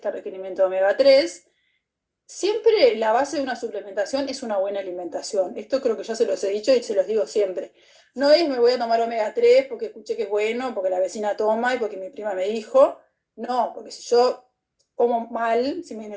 requerimiento de omega 3 siempre la base de una suplementación es una buena alimentación. Esto creo que ya se los he dicho y se los digo siempre. No es me voy a tomar omega 3 porque escuché que es bueno, porque la vecina toma y porque mi prima me dijo. No, porque si yo como mal, si el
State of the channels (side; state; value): both; identical; correlation 1.00